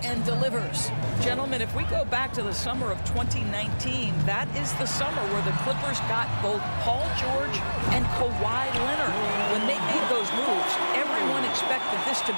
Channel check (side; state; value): both; inverted; correlation -1.00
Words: and delivers. Gentlemen, if we go back to the summer of 2019, that is the summer where the Clippers got both Paul George and Kawhi Leonard. When they made those moves, everyone expected this to